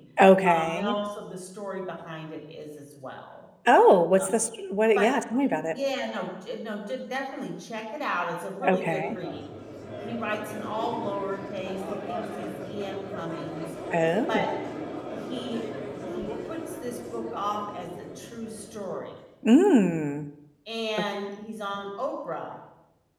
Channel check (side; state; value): both; identical; correlation 1.00